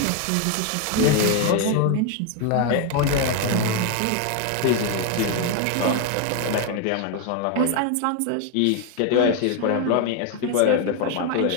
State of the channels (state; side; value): different; both; correlation 0.01